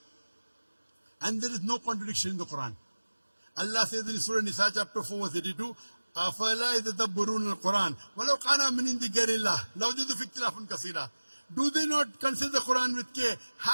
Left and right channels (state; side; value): inverted; both; correlation -1.00